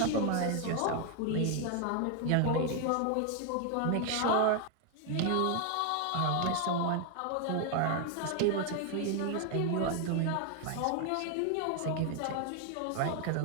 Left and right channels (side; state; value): both; different; correlation 0.01